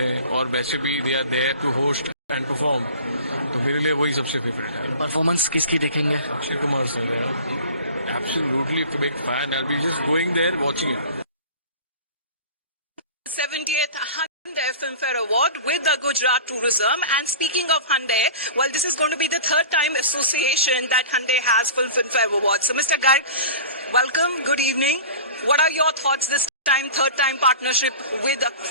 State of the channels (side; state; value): both; inverted; correlation -0.39